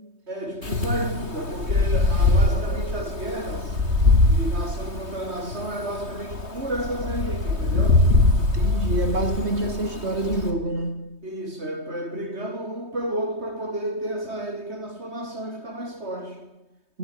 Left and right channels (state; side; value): late; left; 3.2 ms